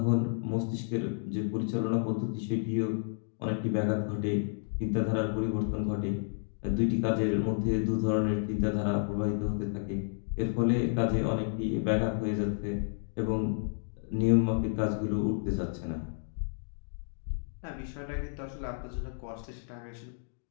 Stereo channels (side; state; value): right; silent; digital silence